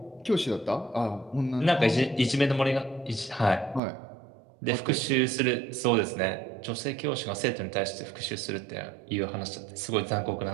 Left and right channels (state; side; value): drops out; left; at 3.8 s